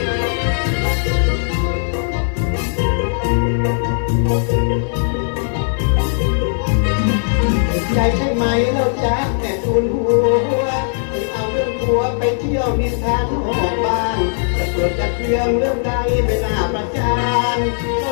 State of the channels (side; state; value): right; silent; digital silence